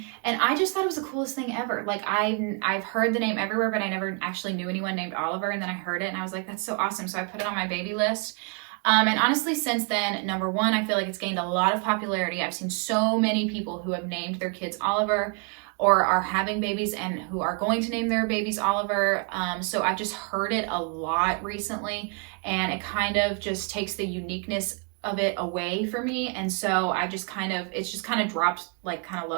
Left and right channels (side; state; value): left; quieter; 36.3 dB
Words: and I just thought it was the coolest thing ever. Like I've heard the name everywhere, but I never actually knew anyone named Oliver. And then I heard it and I was like, that's so awesome. So I put it on my baby list. And honestly, since then, number one, I feel like it's gained a lot of popularity. I've seen so many people who have named their kids Oliver or are having babies and who are going to name their babies Oliver. So I've just heard it a lot recently, and it kind of just takes the uniqueness of it away for me. And so I just it's just kind of dropped like kind of